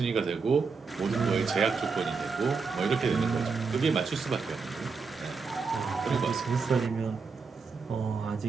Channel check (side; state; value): left; quieter; 4.9 dB